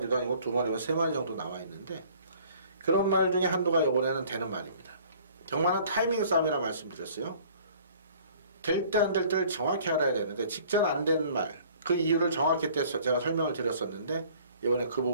아니고 두 마리와 세 마리 정도 나와 있는데, 그런 말 중에 한두가 이번에는 되는 말입니다. 정말은 타이밍 싸움이라 말씀드렸어요. 될 때 안 될 때를 정확히 알아야 되는데, 직전 안 된 말, 그 이유를 정확히 때 제가 설명을 드렸었는데, 이번에 그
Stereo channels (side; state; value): both; inverted; correlation -0.53